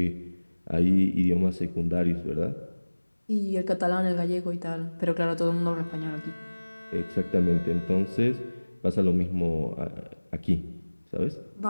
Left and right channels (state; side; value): inverted; both; correlation -1.00